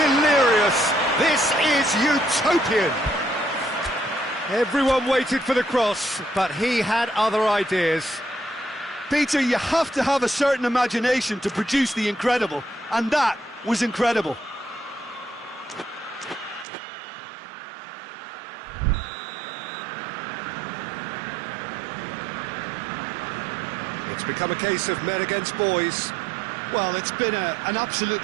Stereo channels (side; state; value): left; drops out; at 16.7 s